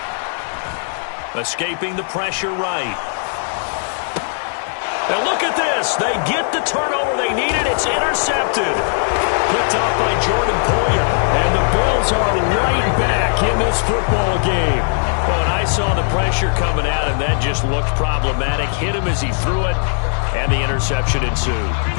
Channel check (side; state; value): right; silent; digital silence